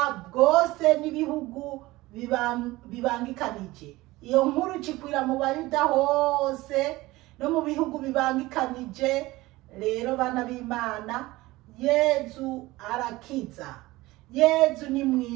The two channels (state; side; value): quieter; left; 19.4 dB